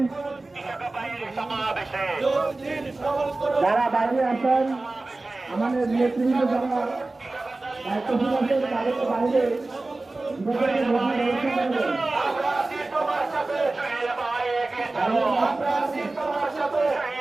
যারা বাইরে আসেন, আমাদের নেতৃবৃন্দ যারা দায়িত্বশীল আছেন তাদেরকে বাইরে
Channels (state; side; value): quieter; left; 3.1 dB